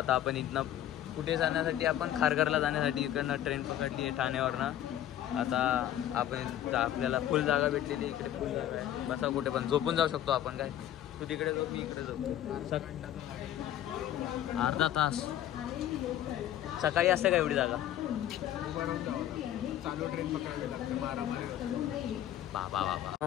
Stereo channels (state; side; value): quieter; right; 11.8 dB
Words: आपण इथनं कुठे जाण्यासाठी, आपण खारघरला जाण्यासाठी इकडनं ट्रेन पकडली आहे ठाण्यावरनं. आता आपण आपल्याला फुल जागा भेटलेली, इकडे फुल जागा आहे. बसा कुठे पण, झोपून जाऊ शकतो आपण. काय तू तिकडे जाऊ, मी इकडे जाऊ. अर्धा तास सकाळी असते का एवढी जागा? चालू ट्रेन पकडावी लागते, मारामारी. बाबा